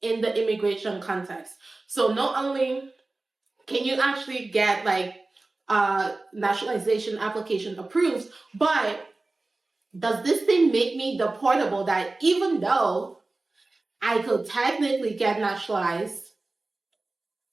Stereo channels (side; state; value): left; quieter; 3.2 dB